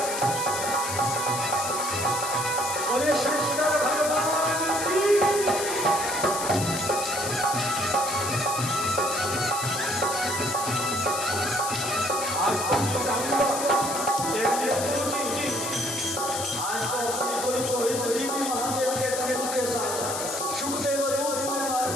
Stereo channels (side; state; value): left; noise; hiss, 4 dB below the sound